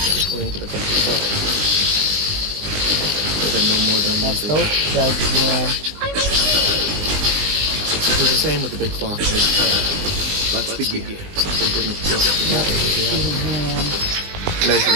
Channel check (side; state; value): left; late; 20 ms